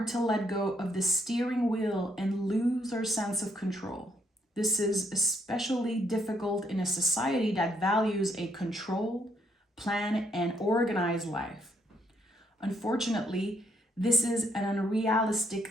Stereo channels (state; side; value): normal; both; correlation 0.72